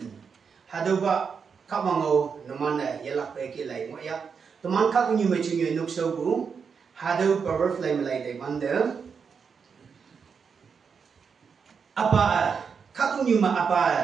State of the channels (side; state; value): left; quieter; 6.1 dB